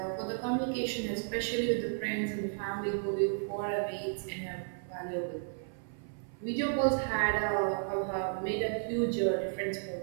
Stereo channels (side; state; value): left; silent; 56 dB below the other